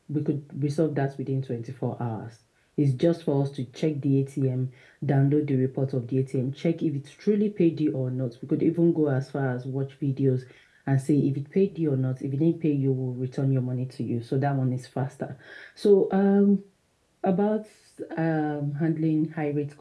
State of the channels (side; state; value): both; identical; correlation 1.00